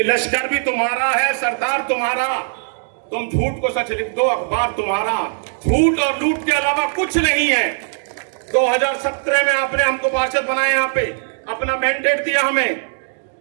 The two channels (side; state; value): left; silent; digital silence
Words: लश्कर भी तुम्हारा है, सरदार तुम्हारा, तुम झूठ को सच लिख दो, अखबार तुम्हारा, झूठ और लूट के अलावा कुछ नहीं है। 2017 में आपने हमको पार्षद बनाया, यहां पे अपना मैंडेट दिया